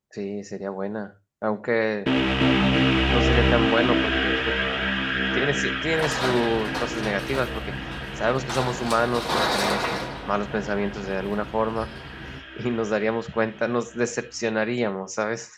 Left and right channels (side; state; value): both; identical; correlation 1.00